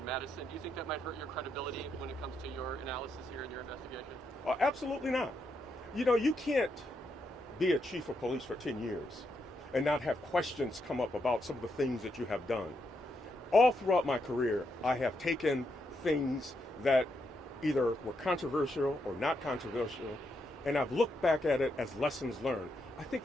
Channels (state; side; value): normal; both; correlation 0.80